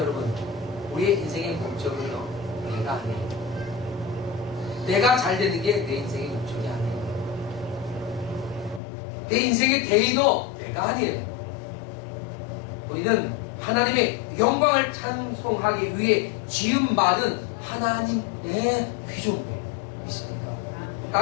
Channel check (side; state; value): right; drops out; at 8.8 s